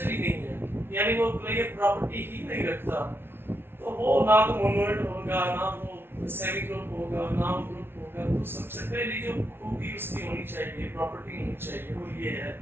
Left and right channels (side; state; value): left; late; 0.11 ms